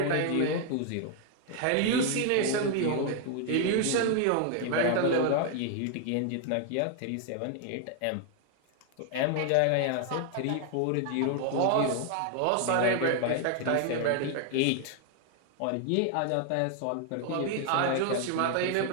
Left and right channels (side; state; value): both; different; correlation 0.00